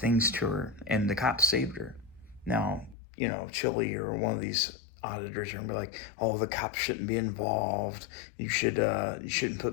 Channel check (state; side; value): drops out; right; at 3.0 s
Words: to her, and the cops saved her. Now, Chile or one of these auditors are gonna be like, "Oh, the cops shouldn't be involved. You shouldn't